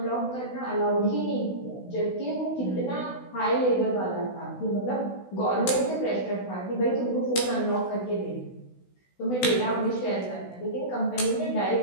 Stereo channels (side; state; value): right; late; 16 ms